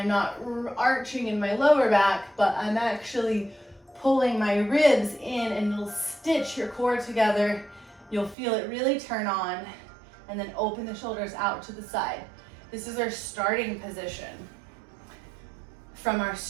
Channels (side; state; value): left; drops out; at 8.3 s